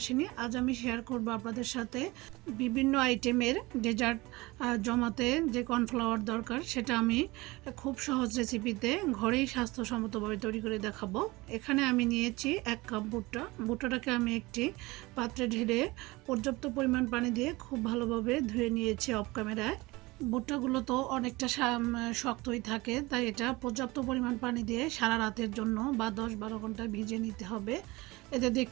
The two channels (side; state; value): left; quieter; 21.9 dB